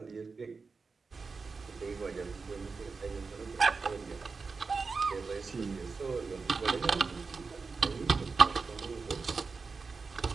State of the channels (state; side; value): quieter; left; 4.6 dB